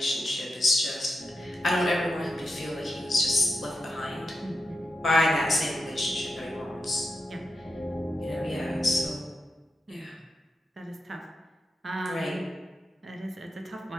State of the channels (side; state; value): both; normal; correlation 0.88